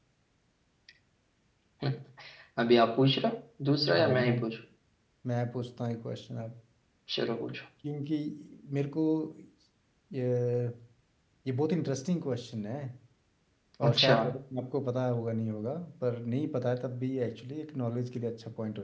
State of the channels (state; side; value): identical; both; correlation 1.00